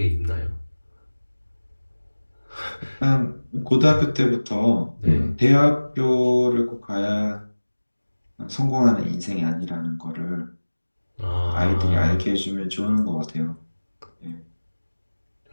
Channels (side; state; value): both; inverted; correlation -1.00